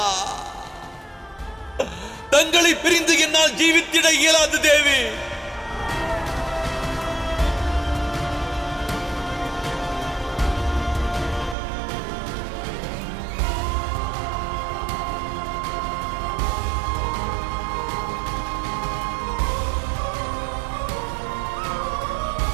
தங்களை பிரிந்து என்னால் ஜீவித்திட இயலாது தேவி.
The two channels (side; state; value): left; drops out; at 11.6 s